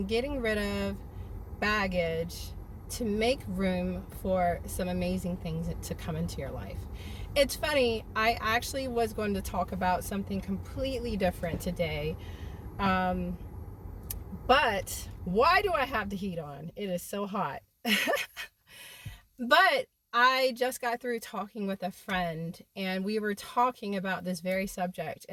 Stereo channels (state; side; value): identical; both; correlation 1.00